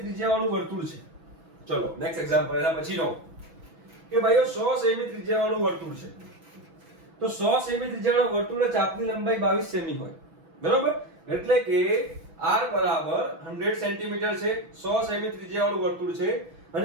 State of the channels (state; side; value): late; left; 6.1 ms